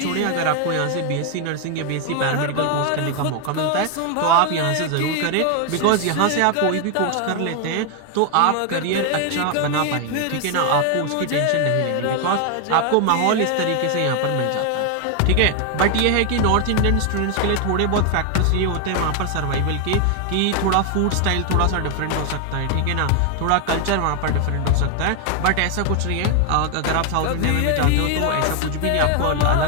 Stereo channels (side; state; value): both; different; correlation 0.01